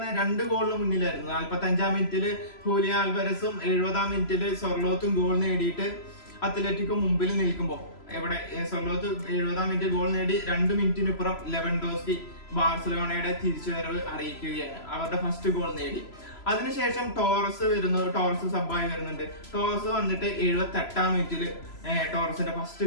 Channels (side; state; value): right; late; 3.0 ms